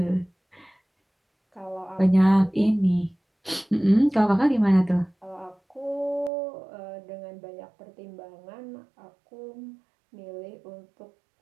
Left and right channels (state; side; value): drops out; left; at 6.3 s